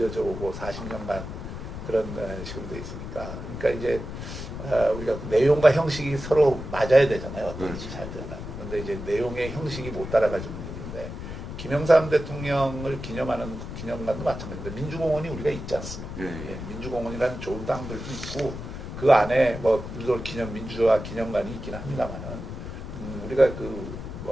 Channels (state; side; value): noise; left; rumble, 8 dB below the sound